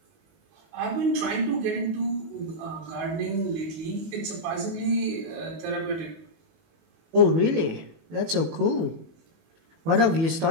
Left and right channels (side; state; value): left; late; 18 ms